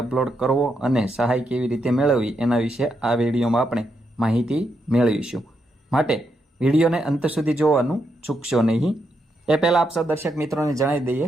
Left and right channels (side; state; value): both; normal; correlation 0.81